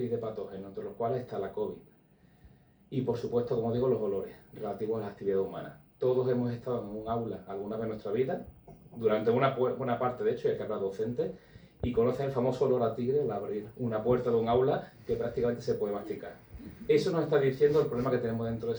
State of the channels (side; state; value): both; identical; correlation 1.00